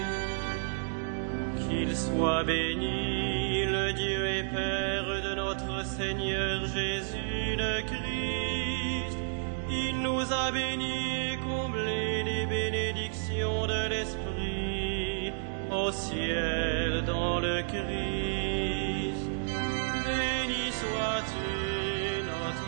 Christ. Qu'il soit béni le Dieu et Père de notre Seigneur Jésus le Christ. Il nous a bénis et comblés des bénédictions de l'Esprit au ciel dans le Christ. Béni sois-tu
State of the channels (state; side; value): silent; left; digital silence